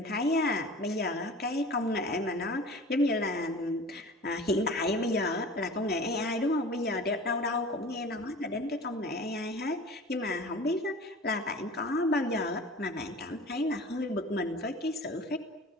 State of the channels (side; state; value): both; normal; correlation 0.40